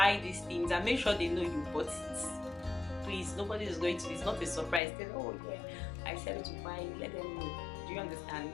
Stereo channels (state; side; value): drops out; right; at 4.8 s